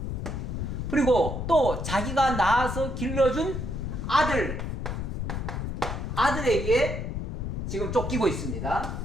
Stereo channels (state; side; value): noise; left; rumble, 3 dB below the sound